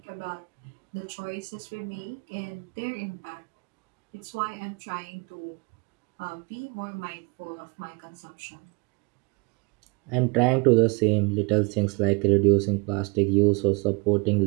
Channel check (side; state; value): left; quieter; 30.2 dB